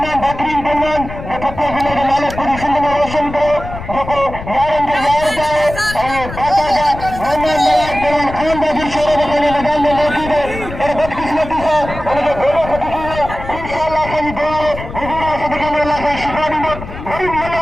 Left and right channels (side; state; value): left; noise; rumble, 11 dB below the sound